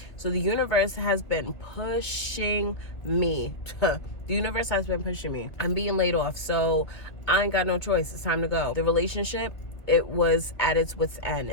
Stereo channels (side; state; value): right; late; 1.9 ms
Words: So the universe has been pushing me. The universe has been pushing me. I'm being laid off, so I ain't got no choice. It's time to go. The relationship, it was at its wit's end.